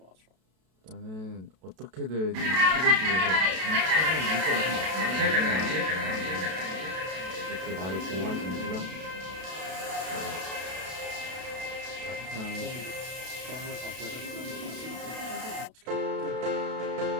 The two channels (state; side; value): late; left; 32 ms